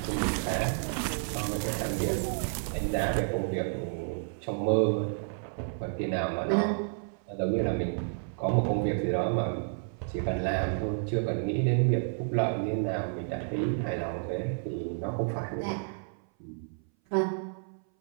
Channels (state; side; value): silent; left; 57 dB below the other